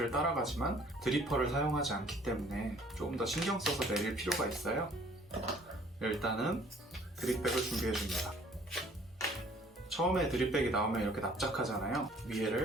따라가지만 드리퍼를 사용하지 않기 때문에 조금 더 신경 써서 내릴 필요가 있어요. 일단은 드립백을 준비해줍니다. 처음에 드립백이 나오면 이렇게 납작하잖아요.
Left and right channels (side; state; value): both; normal; correlation 0.56